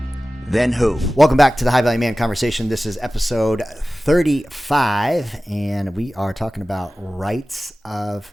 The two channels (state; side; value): normal; both; correlation 0.96